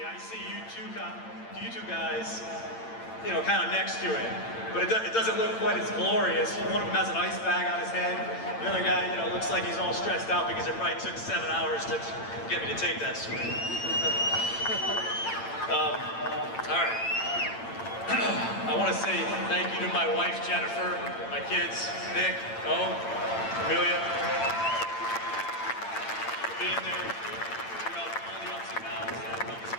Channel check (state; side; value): late; right; 8.8 ms